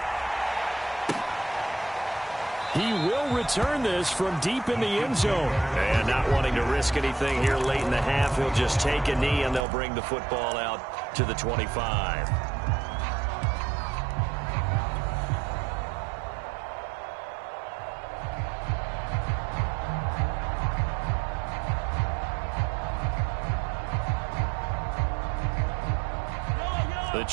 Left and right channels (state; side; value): drops out; left; at 9.6 s